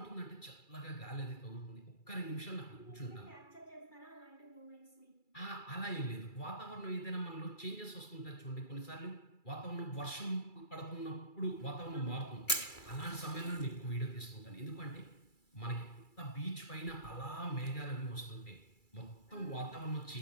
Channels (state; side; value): late; right; 2.3 ms